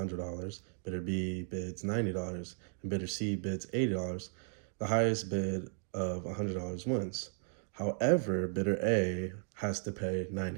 bidder B bids $90, and bidder C bids $80, the highest bid of $100 wins. However, bidder A has to pay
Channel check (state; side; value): silent; left; digital silence